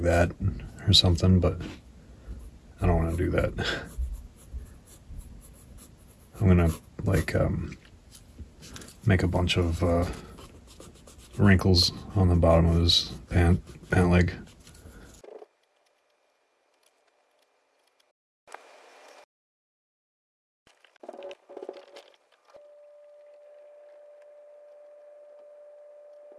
that or something, but I don't want to do that. I'm gonna like make a bunch of wrinkles on the bottom of his pant leg.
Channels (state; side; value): identical; both; correlation 1.00